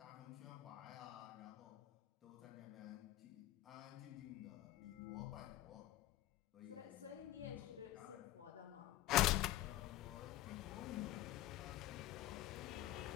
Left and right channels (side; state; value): right; quieter; 15.3 dB